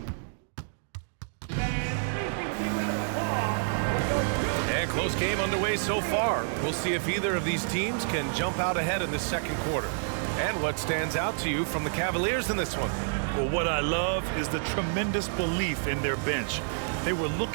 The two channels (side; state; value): left; silent; digital silence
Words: And close game underway so far. We'll see if either of these teams can jump out ahead in the second quarter. And what stands out to you from the Cavaliers in this one? Well, what I love is the tremendous belief in their bench. They were